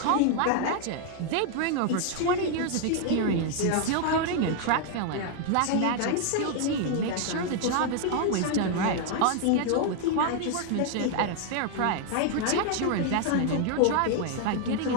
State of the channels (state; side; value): different; both; correlation 0.00